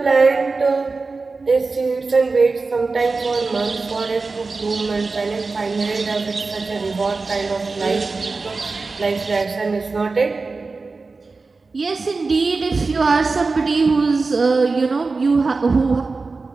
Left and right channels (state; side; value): quieter; left; 4.0 dB